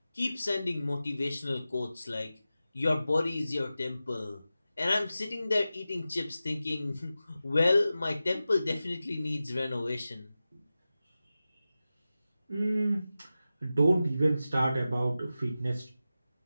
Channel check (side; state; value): both; inverted; correlation -0.94